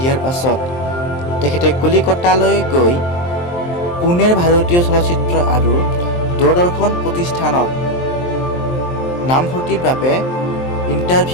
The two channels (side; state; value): right; late; 23 ms